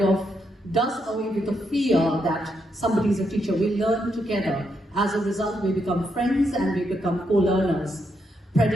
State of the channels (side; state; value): both; normal; correlation 0.79